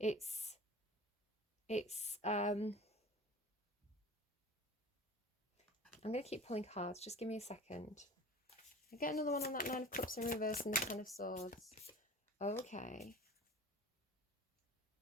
I'm going to keep pulling cards. Just give me a second. I get another one on that 9 of Cups in reverse and the 10 of Swords. Okay.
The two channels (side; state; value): both; normal; correlation 0.40